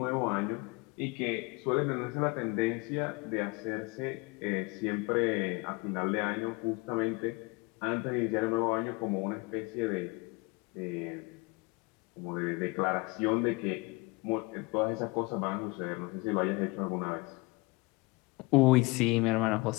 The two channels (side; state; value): right; quieter; 26.1 dB